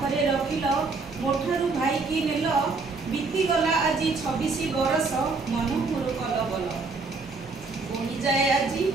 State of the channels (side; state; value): left; quieter; 4.1 dB